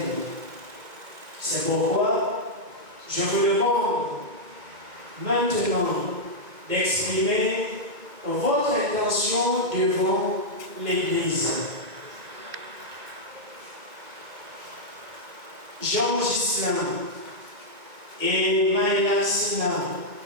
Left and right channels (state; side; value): late; left; 2.1 ms